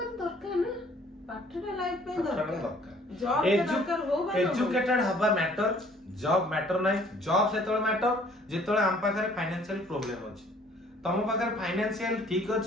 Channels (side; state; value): both; normal; correlation 0.58